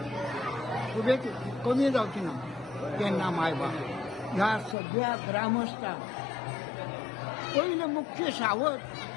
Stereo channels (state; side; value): drops out; right; at 4.8 s